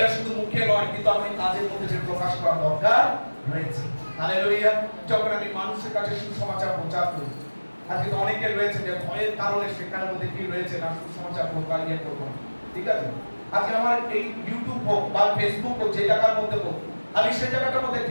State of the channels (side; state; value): both; inverted; correlation -1.00